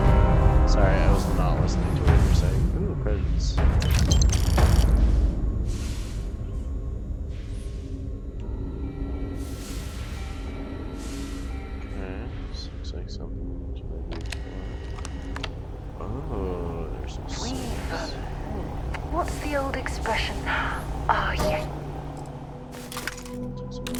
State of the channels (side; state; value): both; identical; correlation 1.00